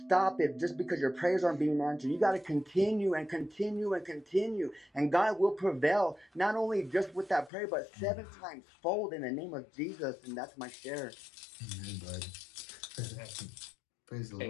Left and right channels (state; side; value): drops out; right; at 7.5 s